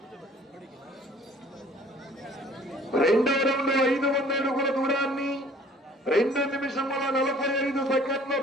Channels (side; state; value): both; normal; correlation 0.54